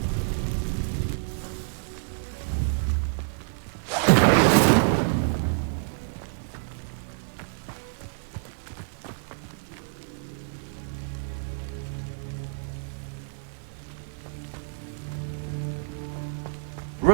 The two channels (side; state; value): left; silent; digital silence